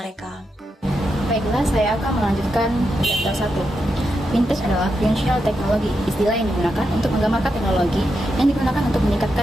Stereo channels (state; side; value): normal; both; correlation 0.85